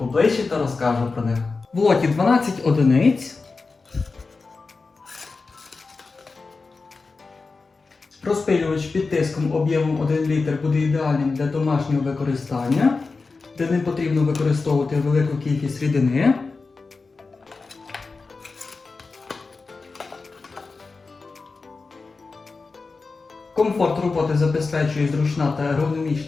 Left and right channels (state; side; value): quieter; right; 4.1 dB